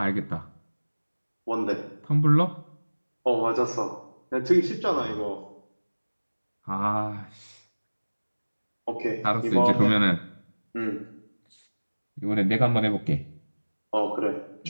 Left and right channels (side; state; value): both; inverted; correlation -1.00